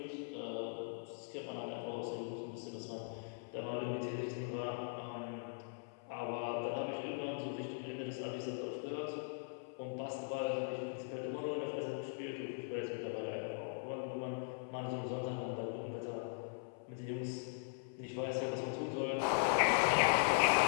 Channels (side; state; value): right; silent; 51 dB below the other